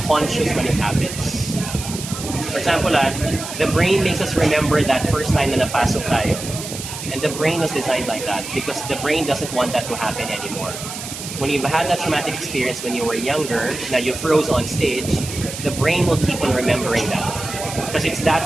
conscious when it happens. For example, the brain makes us remember that first time na napasok tayo. And the brain was designed like that because the brain doesn't want that to happen anymore. When you've had that traumatic experience when you were younger, now you froze on stage, the brain will keep on remembering that. Because it's that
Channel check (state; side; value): noise; right; hiss, 9 dB below the sound